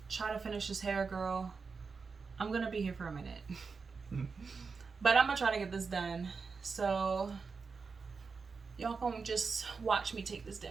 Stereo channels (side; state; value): left; quieter; 4.9 dB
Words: try to finish this hair, girl. I'm gonna be here for a minute. But I'm gonna try to get this done. So y'all gonna just watch me take this